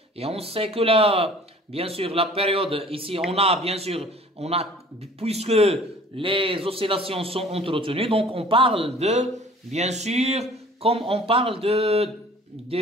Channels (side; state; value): both; normal; correlation 0.49